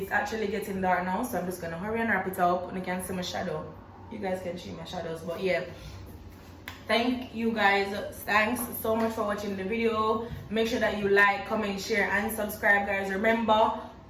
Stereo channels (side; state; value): both; identical; correlation 1.00